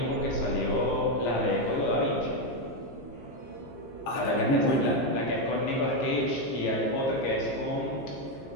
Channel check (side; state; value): right; late; 15 ms